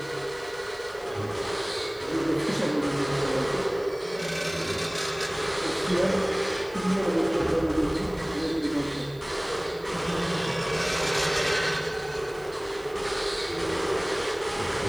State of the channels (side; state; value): right; noise; hiss, 26 dB below the sound